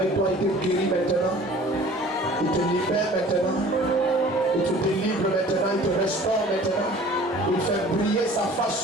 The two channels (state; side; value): normal; both; correlation 0.47